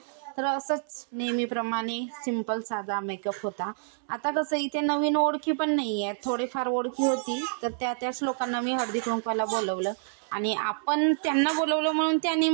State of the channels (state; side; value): silent; left; digital silence